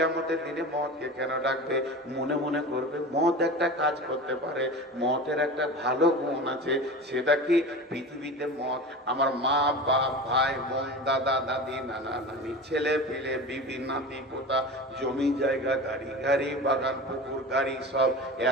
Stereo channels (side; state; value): both; normal; correlation 0.31